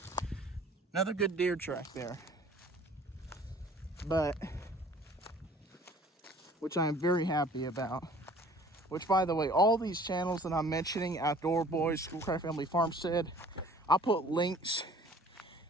Another good deer track there. But, which I am very happy about. Which, by the way, all these channels that I'm mentioning, Outdoor Boys, Schoolcraft Family Farmstead, I'll put links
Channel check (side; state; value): both; normal; correlation 0.51